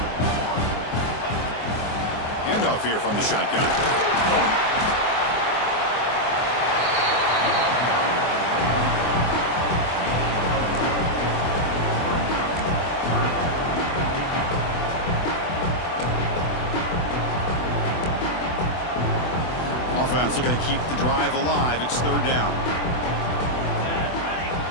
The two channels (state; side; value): late; right; 24 ms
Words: Handoff here from the shotgun. Offense looking to keep the drive alive. It's 3rd down.